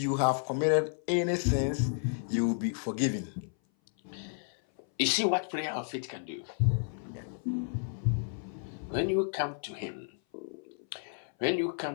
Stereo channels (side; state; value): right; silent; 56 dB below the other